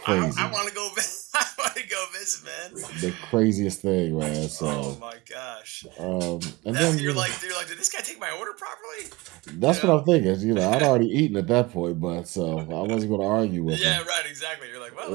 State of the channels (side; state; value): left; quieter; 22.7 dB